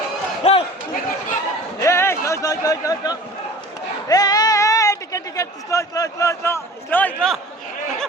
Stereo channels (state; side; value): normal; both; correlation 0.42